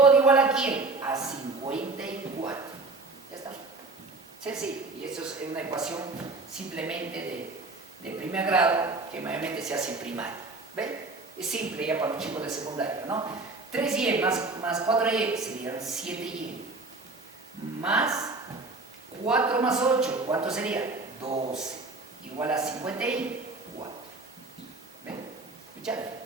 igual a quién? A 54. Ya está. Sencillo. Y eso es una ecuación simplemente de primer grado que mayormente se hace en primaria. ¿Ven? Es simple ya para los chicos de secundaria, ¿no? 3y más 4y serían 7y. Más 4 más 8, ¿cuánto sería? 12. Igual a 54. ¿Ven? ¿Escucharon?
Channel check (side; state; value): left; quieter; 3.4 dB